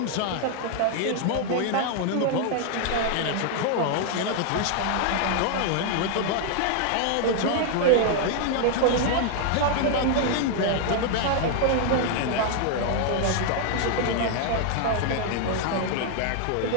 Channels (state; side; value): different; both; correlation 0.00